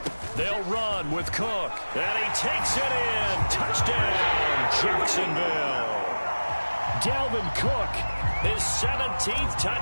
They'll run with Cook, and he takes it in. Touchdown, Jacksonville. Dalvin Cook, his 17th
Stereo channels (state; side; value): inverted; both; correlation -1.00